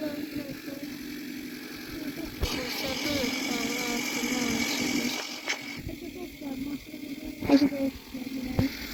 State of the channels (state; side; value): identical; both; correlation 1.00